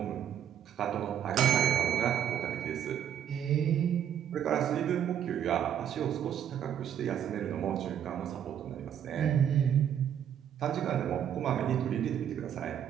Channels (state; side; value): quieter; left; 9.5 dB